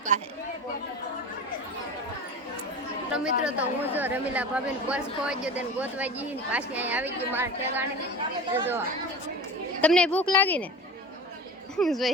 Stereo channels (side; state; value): both; normal; correlation 0.32